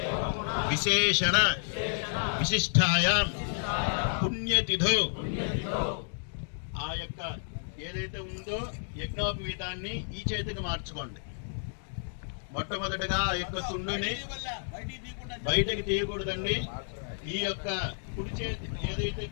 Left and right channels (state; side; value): silent; right; digital silence